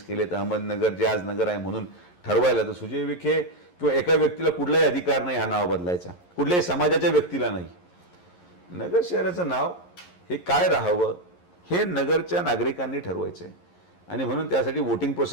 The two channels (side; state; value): right; late; 11 ms